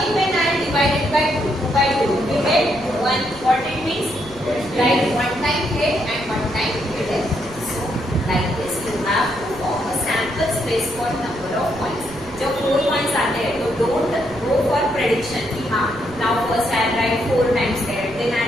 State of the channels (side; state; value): right; noise; rumble, 18 dB below the sound